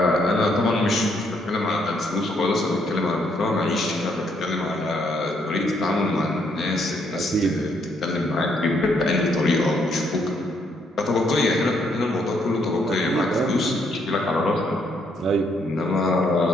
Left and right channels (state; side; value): normal; both; correlation 0.72